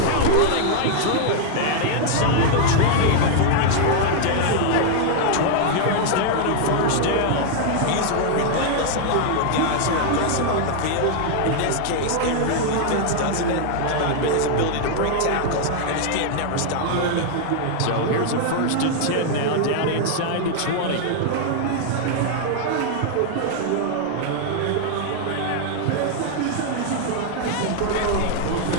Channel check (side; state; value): both; different; correlation 0.00